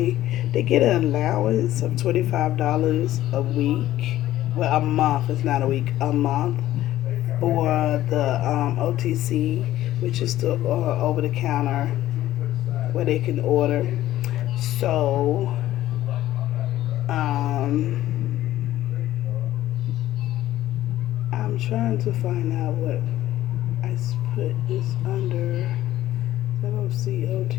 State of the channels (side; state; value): right; quieter; 14.1 dB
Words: They get an allowance of $25 a week. Well, a month. It's not a week. A month for the OTC, which is the over-the-counter where they can order. So, um, I'm trying to find out what I put this under. I don't see